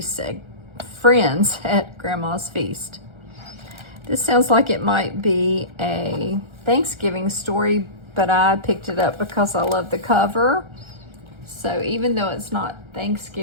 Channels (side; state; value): left; late; 1.3 ms